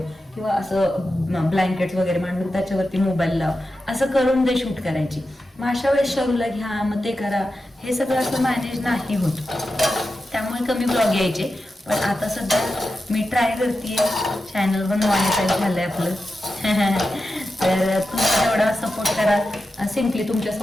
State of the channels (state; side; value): normal; both; correlation 0.91